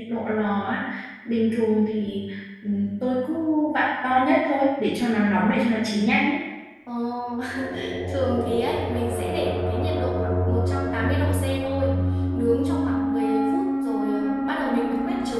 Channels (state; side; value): identical; both; correlation 1.00